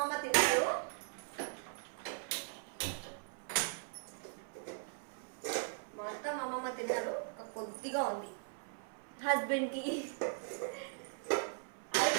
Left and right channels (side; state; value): left; silent; 52 dB below the other